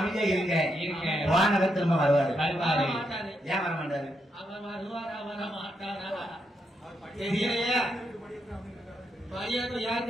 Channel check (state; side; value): normal; both; correlation 0.81